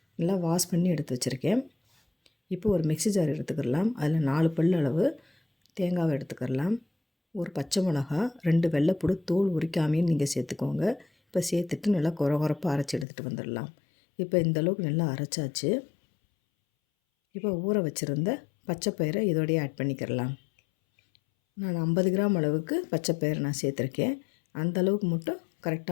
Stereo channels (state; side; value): drops out; right; at 13.1 s